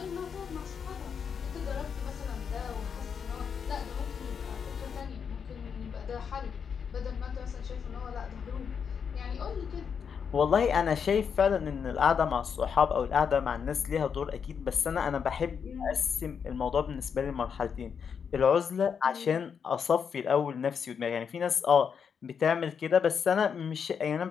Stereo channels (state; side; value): quieter; right; 6.8 dB